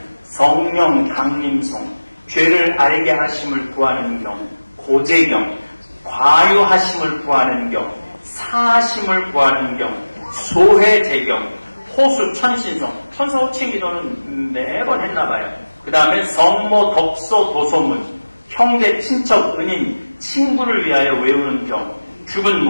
성령 강림송, 죄를 알게 하심을 구하는 경, 고제경, 과유하심을 구하는 경, 사하심을 구하는 경, 소회제경, 호수 천신성, 천사호칭 기도는 매번 했나봐요. 그 다음에 성모 덕소 도소문, 형제 친척 은인 친구를 위하여 외우는 경, 죽은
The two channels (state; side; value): inverted; both; correlation -1.00